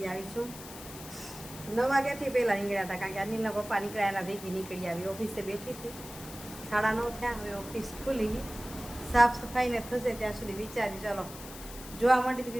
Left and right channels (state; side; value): noise; left; hiss, 14 dB below the sound